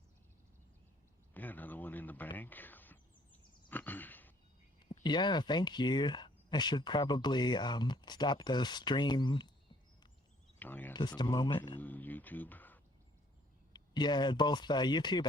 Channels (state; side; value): normal; both; correlation 0.61